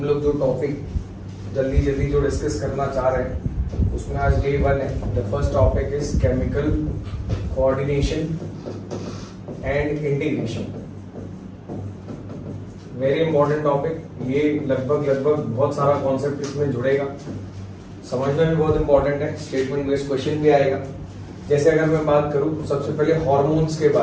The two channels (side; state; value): both; identical; correlation 1.00